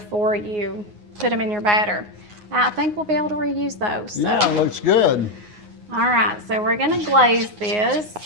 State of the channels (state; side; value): late; left; 9.6 ms